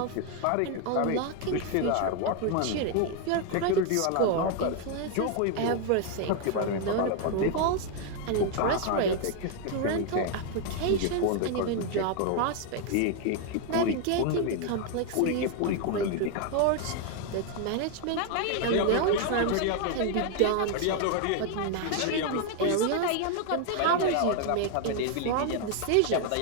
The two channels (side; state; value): both; different; correlation 0.01